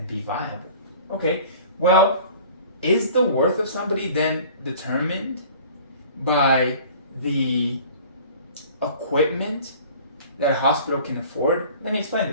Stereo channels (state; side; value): inverted; both; correlation -0.46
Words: be viable. Okay, well, is the worth of somebody then determined by the equipment that a hospital can afford? Let me explain